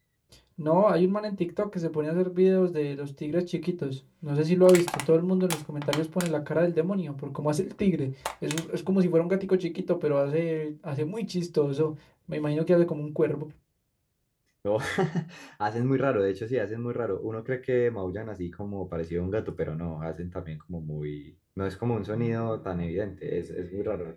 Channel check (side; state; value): both; identical; correlation 1.00